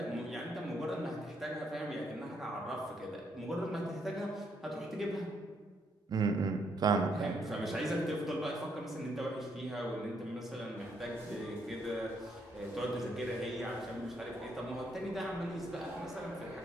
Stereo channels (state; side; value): normal; both; correlation 0.74